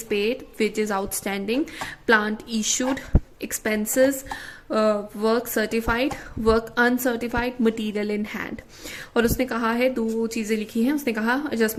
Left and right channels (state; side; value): identical; both; correlation 1.00